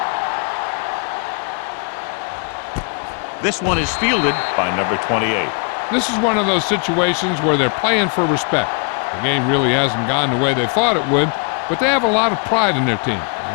one. This one is fielded by number 28. This is one of those situations where they're playing for respect. The game really hasn't gone the way they thought it would, but they have a lot of pride in their team.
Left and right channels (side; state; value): right; quieter; 38.2 dB